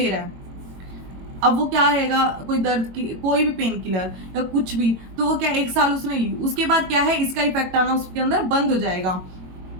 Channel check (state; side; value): late; left; 22 ms